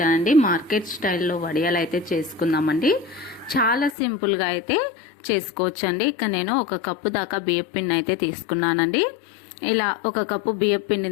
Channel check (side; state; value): right; drops out; at 4.0 s